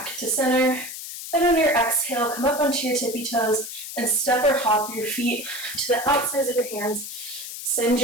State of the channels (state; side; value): noise; left; hiss, 9 dB below the sound